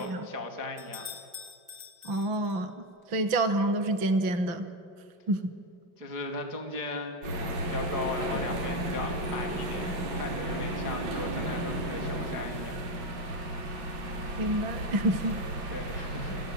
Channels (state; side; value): late; left; 5.1 ms